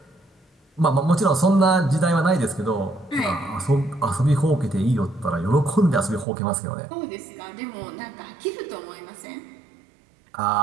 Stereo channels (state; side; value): drops out; left; at 6.2 s